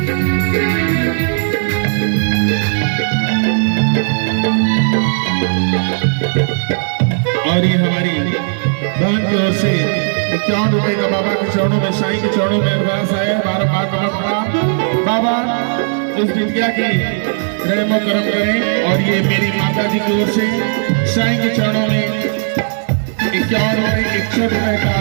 और ये हमारी बहन की ओर से 51 रुपए का बाबा के चरणों में, साईं के चरणों में अरदास आया। 12 बार बाबा इस बिटिया की रहमो करम करें। और ये मेरी माता जी की ओर से साईं के चरणों में 51 रुपए 61 रुपए का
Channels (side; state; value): left; silent; digital silence